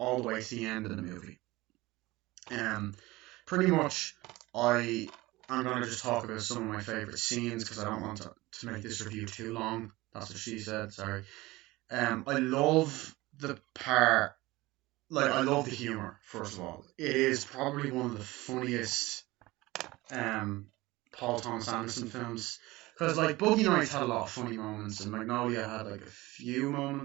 the way to the end of the movie. Pretty much, I'm gonna just talk about some of my favorite scenes because I don't want to make this review too long. That's what she said. Sorry. I love the part. Like, I love the humor. First of all, it is probably one of the funniest Paul Thomas Anderson films. Because like Boogie Nights had a lot of funny moments, and Magnolia had like a few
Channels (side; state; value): left; quieter; 20.0 dB